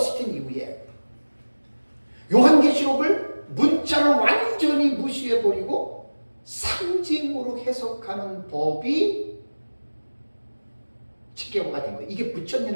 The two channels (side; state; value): both; inverted; correlation -1.00